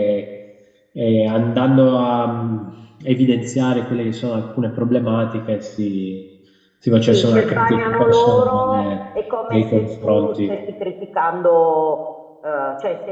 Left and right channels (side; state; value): both; identical; correlation 1.00